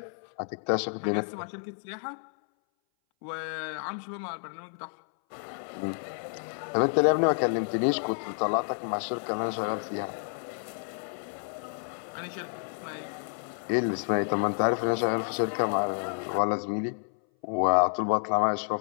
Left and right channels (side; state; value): right; silent; 58 dB below the other